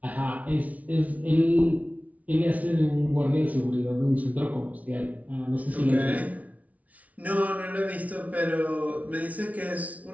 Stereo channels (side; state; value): left; late; 0.069 ms